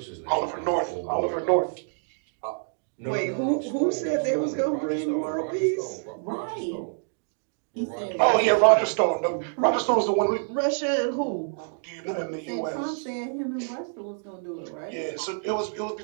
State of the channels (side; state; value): left; silent; digital silence